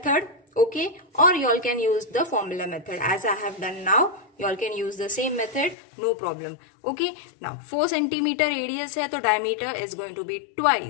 okay, or you all can use the formula method. As I have done now, you all can use the same method, no problem. Okay, now 4 centimeter radius है, तो diameter is going to be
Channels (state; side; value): drops out; right; at 5.8 s